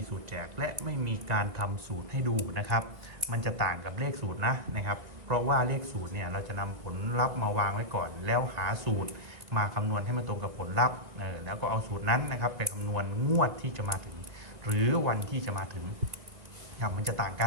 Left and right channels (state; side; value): late; left; 2.3 ms